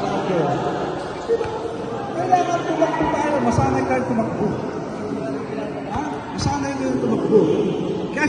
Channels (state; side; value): identical; both; correlation 1.00